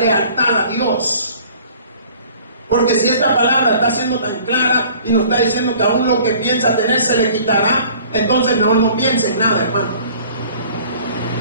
a Dios. Porque si esta palabra está siendo tan clara y nos está diciendo que aún lo que piensa tener se le quitará, entonces mejor no piense en nada, hermano.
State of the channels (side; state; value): both; inverted; correlation -0.51